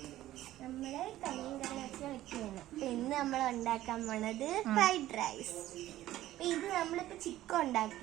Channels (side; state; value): left; quieter; 14.5 dB